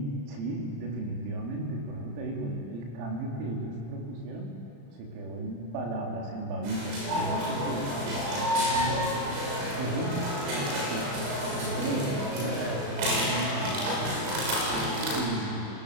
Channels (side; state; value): left; late; 35 ms